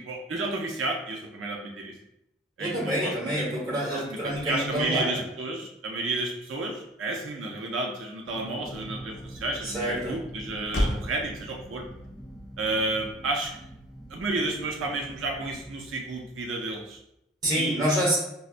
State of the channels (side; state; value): both; normal; correlation 0.42